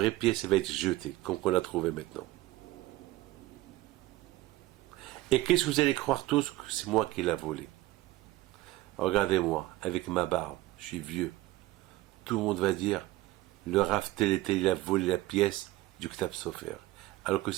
pièce va être jetée, comme on l'a trouvée maintenant. Et qu'est-ce que vous allez croire tous que c'est moi qui l'ai volé? Regardez-moi, avec ma barbe, je suis vieux. Tout le monde va dire, le Rav tel et tel, il a volé la pièce du Ktab Sofer. Alors que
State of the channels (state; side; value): quieter; left; 17.5 dB